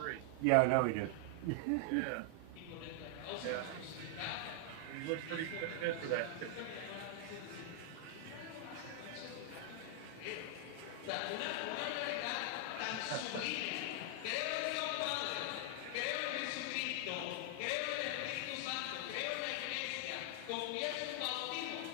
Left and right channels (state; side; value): different; both; correlation 0.00